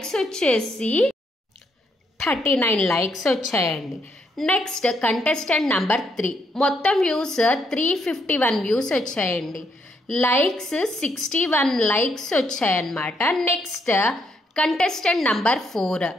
వచ్చేసి 39 లైక్స్ వచ్చాయండి. నెక్స్ట్ కంటెస్టెంట్ నెంబర్ 3 మొత్తం వ్యూస్ 351 వ్యూస్ వచ్చాయండి. లైక్స్ 61 లైక్స్ వచ్చాయన్నమాట. నెక్స్ట్ కంటెస్టెంట్ నంబర్ 4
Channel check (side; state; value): both; normal; correlation 0.75